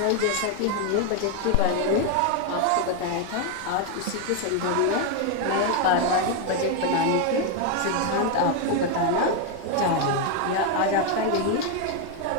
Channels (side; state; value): both; different; correlation 0.01